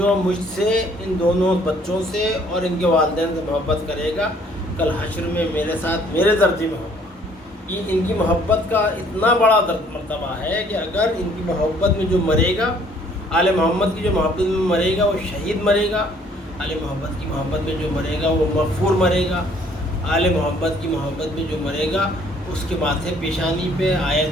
مجھ سے، ان دونوں بچوں سے اور ان کے والدین سے محبت کرے گا کل حشر میں میرے ساتھ میرے درجے میں ہوگا۔ یہ ان کی محبت کا اتنا بڑا مرتبہ ہے کہ اگر ان کی محبت میں جو مرے گا، آل محمد کی جو محبت میں مرے گا وہ شہید مرے گا، آل محمد کی محبت میں جو مرے گا وہ مغفور مرے گا، آل محمد کی محبت میں جو مرے گا اس کے ماتھے پیشانی پہ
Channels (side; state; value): both; normal; correlation 0.60